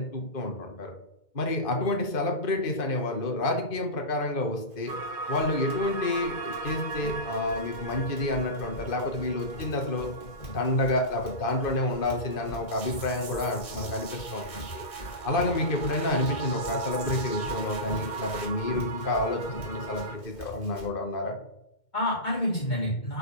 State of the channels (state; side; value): late; right; 2.2 ms